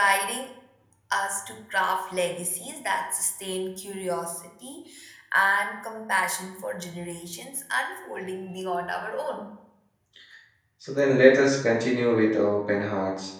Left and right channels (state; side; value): identical; both; correlation 1.00